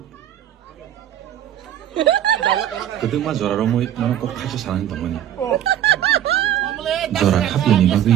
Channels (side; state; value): left; quieter; 11.1 dB